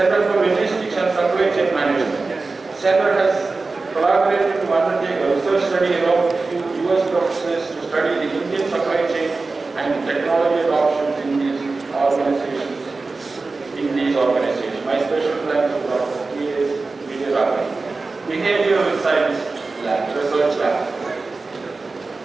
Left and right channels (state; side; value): quieter; left; 3.7 dB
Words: for Logistics and Supply Chain Management. Center has collaborated to undertake a research study along with few US professors to study the Indian supply chain and technology adoption in these organizations. My special thanks to Dr. P.S. Vijayaraman. Behavioral Science Lab, Research Lab.